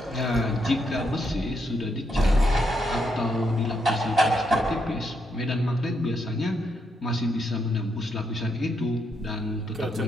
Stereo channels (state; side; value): normal; both; correlation 0.79